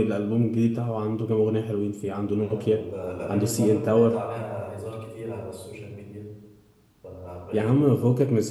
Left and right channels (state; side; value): identical; both; correlation 1.00